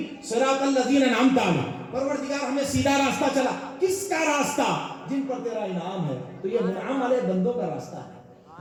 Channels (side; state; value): both; identical; correlation 1.00